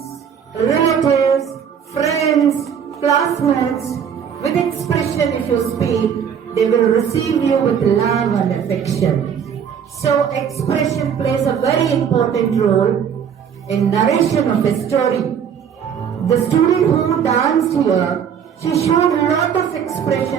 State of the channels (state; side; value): quieter; left; 7.8 dB